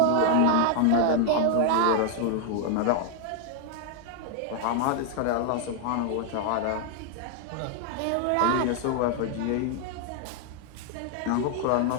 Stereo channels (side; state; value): both; different; correlation 0.00